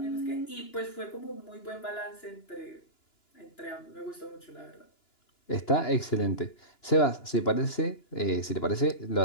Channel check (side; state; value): right; late; 2.9 ms